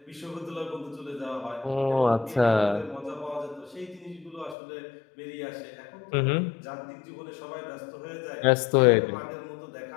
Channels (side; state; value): right; drops out; at 4.5 s